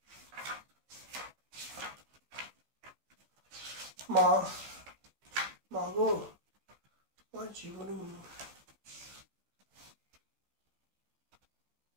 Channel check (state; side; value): late; left; 15 ms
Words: মাগো আমার জীবনে